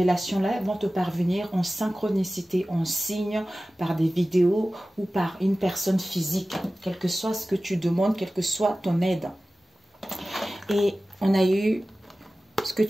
vont te parvenir en synchronicité, en signe, par des vidéos ou par une personne physique, quel que soit ce que tu demandes, quelle que soit ton aide. Et on a eu, ce que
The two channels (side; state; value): both; normal; correlation 0.96